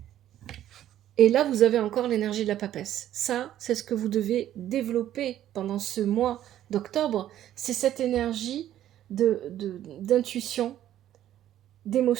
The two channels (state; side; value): quieter; left; 12.1 dB